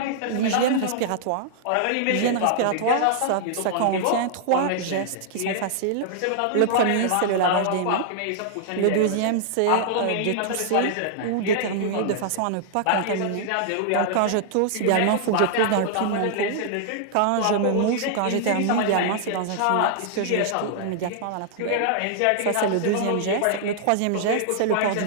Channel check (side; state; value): both; different; correlation -0.01